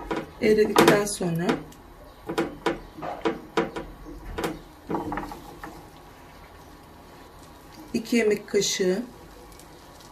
eridikten sonra iki yemek kaşığı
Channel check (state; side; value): identical; both; correlation 1.00